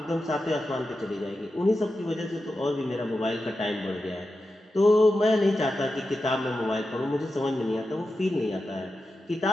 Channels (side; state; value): both; normal; correlation 0.90